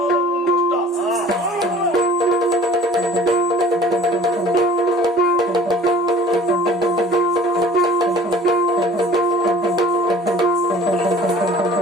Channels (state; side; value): normal; both; correlation 0.48